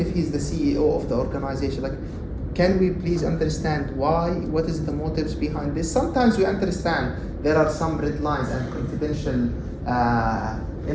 he's the CEO of the organization, like, can we please understand why? What is the motives behind this? Sometimes we understand there are some red lines and confidential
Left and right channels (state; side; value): identical; both; correlation 1.00